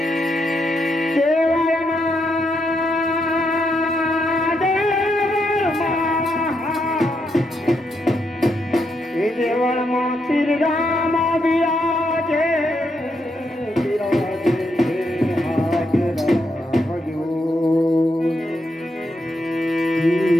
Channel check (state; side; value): normal; both; correlation 0.80